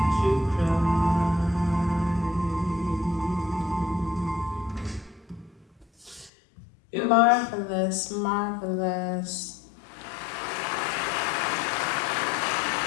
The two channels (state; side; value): drops out; right; at 6.3 s